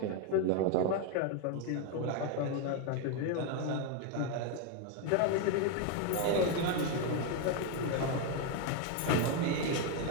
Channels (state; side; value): different; both; correlation 0.01